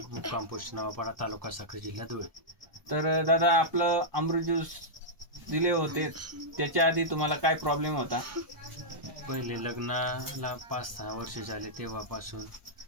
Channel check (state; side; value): late; left; 1.2 ms